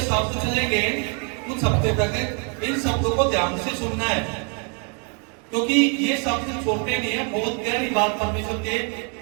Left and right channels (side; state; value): left; quieter; 37.6 dB